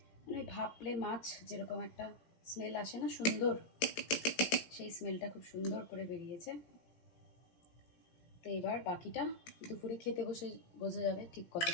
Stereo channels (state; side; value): late; right; 17 ms